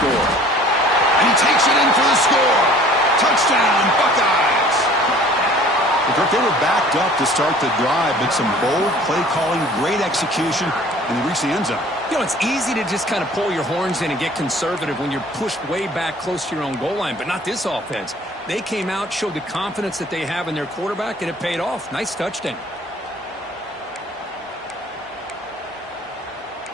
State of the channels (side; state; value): both; normal; correlation 0.50